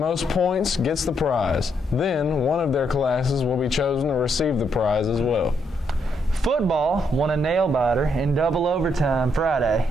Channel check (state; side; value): normal; both; correlation 0.76